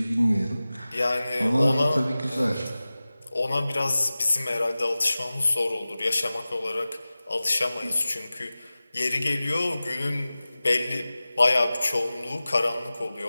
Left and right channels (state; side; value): inverted; both; correlation -0.97